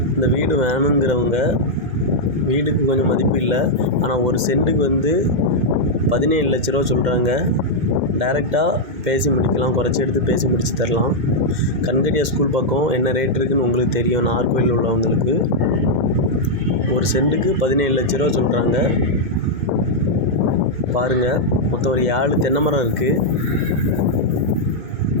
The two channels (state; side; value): late; left; 2.1 ms